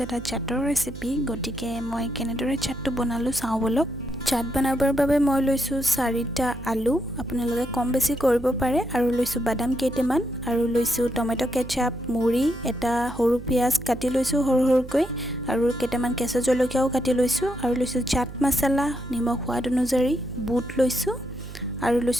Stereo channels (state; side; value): noise; right; hum, 13 dB below the sound